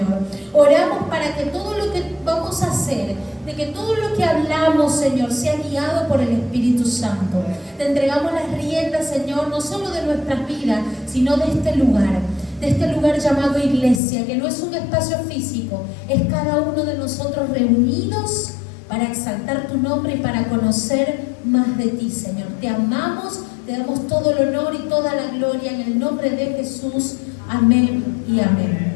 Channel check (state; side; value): drops out; right; at 14.0 s